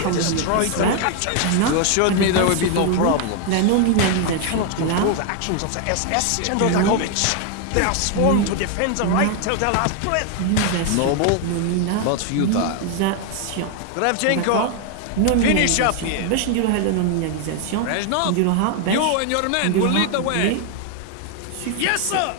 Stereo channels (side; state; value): both; different; correlation 0.01